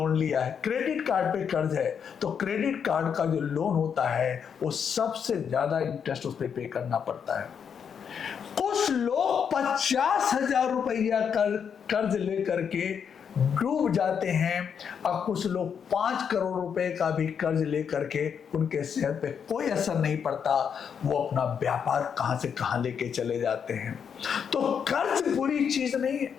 लिया है, क्रेडिट कार्ड पे कर्ज है, तो क्रेडिट कार्ड का जो लोन होता है वो सबसे ज्यादा इंटरेस्ट उस पर पे करना पड़ता है। कुछ लोग 50,000 रुपया कर्ज लेकर के डूब जाते हैं, और कुछ लोग 5 करोड़ रुपए का भी कर्ज लेकर के उनके सेहत पे कोई असर नहीं पड़ता, वो अपना व्यापार कहां से कहां लेके चले जाते हैं। तो कर्ज बुरी चीज नहीं है,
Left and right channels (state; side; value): quieter; right; 7.3 dB